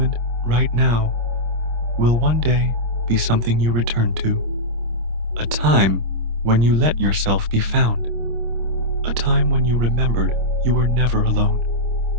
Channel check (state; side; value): late; left; 26 ms